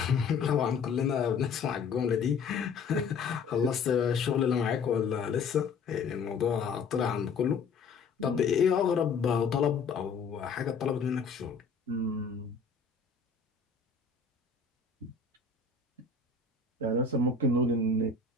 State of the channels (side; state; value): right; quieter; 5.0 dB